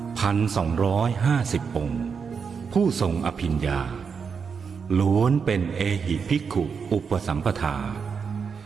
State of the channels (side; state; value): left; quieter; 6.0 dB